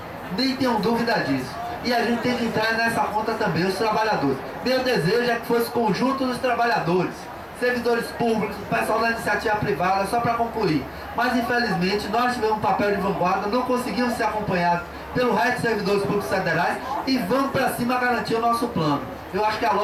Nem tenham dúvida disso. E a gente tem que entrar nessa conta também, os trabalhadores. Meu desejo é que fosse o conjunto dos trabalhadores, servidores públicos, o pessoal da iniciativa privada, só para concluir. Mas infelizmente nós tivemos um papel de vanguarda, não conseguimos ser acompanhados pelo resto dos servidores públicos federais e vamos para cima garantir o nosso plano. Eu acho que a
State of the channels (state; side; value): identical; both; correlation 1.00